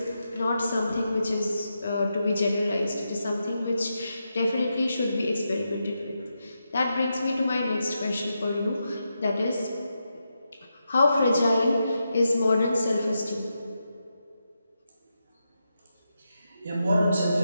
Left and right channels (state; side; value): inverted; both; correlation -0.86